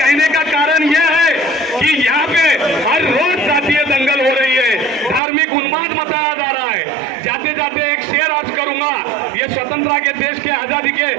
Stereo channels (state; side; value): drops out; left; at 5.2 s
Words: का कारण यह है कि यहाँ पे हर रोज जातीय दंगल हो रही है, धार्मिक उन्माद मचाया जा रहा है। जाते जाते एक शेर आज करूंगा, ये स्वतंत्रता के देश के आजादी के